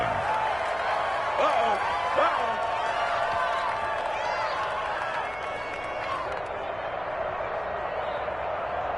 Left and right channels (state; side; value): noise; right; hum, 19 dB below the sound